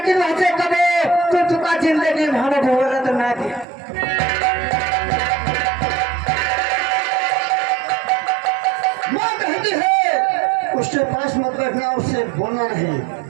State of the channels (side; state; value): left; drops out; at 3.7 s